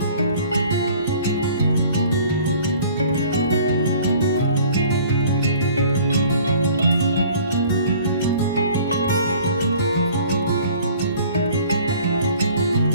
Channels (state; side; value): inverted; both; correlation -0.52